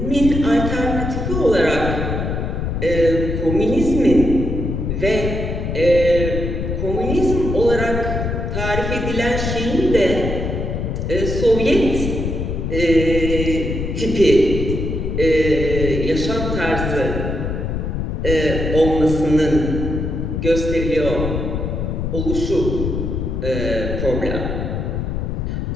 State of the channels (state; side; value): noise; left; rumble, 2 dB below the sound